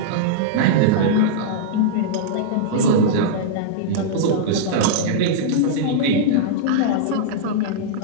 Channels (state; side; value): different; both; correlation -0.02